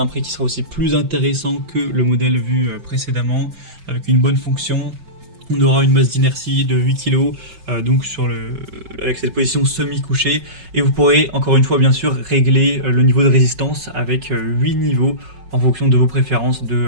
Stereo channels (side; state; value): left; late; 5.4 ms